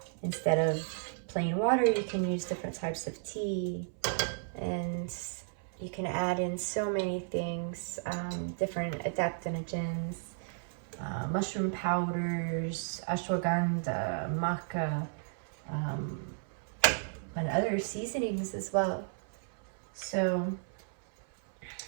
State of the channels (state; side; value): silent; left; 55 dB below the other